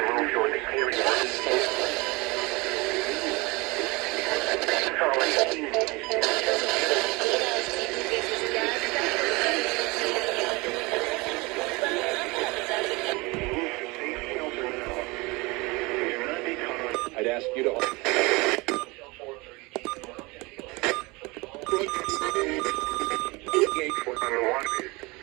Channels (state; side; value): quieter; left; 24.8 dB